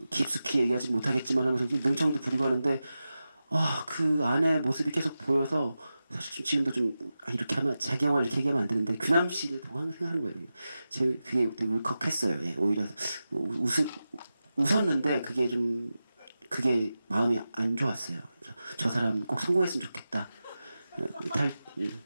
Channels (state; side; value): inverted; both; correlation -0.93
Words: 깊숙이 얘기하지 못하겠지만 하면서 능청도 부리고 하는데 그 안에 모습이 계속 보여서 사실 지금도 좀 이렇게 하면 자기 영화를 이렇게 얘기하면 안 되는데 규남 씨를 보고 항상 생각하는 거예요. 그게 되게 울컥했어요. 오히려 웃었는데 그게 마음이 안 좋았어요. 저 사람 꼭 성공했으면 좋겠다.